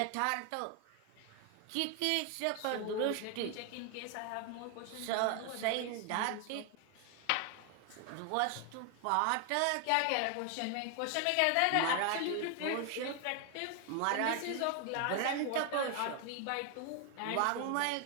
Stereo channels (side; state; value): both; different; correlation 0.01